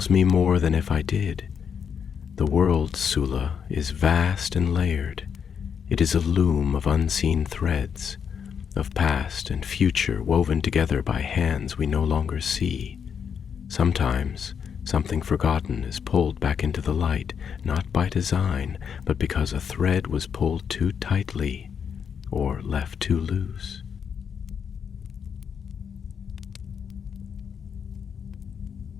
me more than if I did. The world, Sula, is vast and layered. It is a loom of unseen threads, of past and future woven together by hands we no longer see. Sometimes something forgotten is pulled back into the light, not by design, but because a thread was pulled too tightly or left too loose."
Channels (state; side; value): quieter; right; 7.2 dB